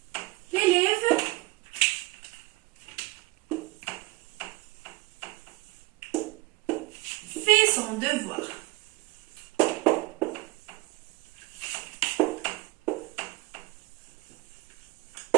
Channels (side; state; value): left; quieter; 22.2 dB